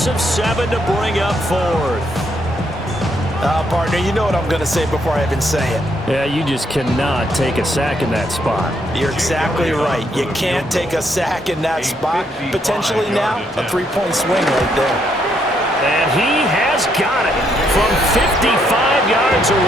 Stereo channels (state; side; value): normal; both; correlation 0.74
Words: of 7 to bring up fourth. Partner, you know what I'm going to say before I even say it. Yeah, you just cannot take a sack in that spot. You're exactly right. You can't take a sack in that spot. Potentially now, a 3-point swing right there. And he has got it from 55 yards